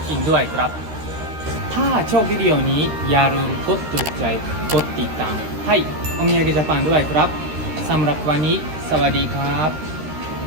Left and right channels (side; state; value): left; late; 13 ms